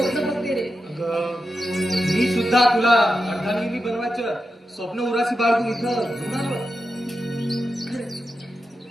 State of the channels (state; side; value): normal; both; correlation 0.89